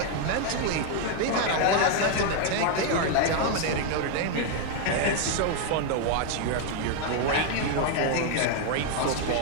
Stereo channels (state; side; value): different; both; correlation 0.00